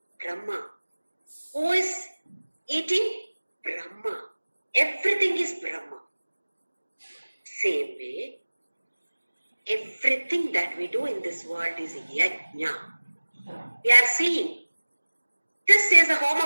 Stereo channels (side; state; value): both; inverted; correlation -1.00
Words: Brahma. Who is eating? Brahma. Everything is Brahma. Same way, everything that we do in this world is yajna. We are seeing. This is a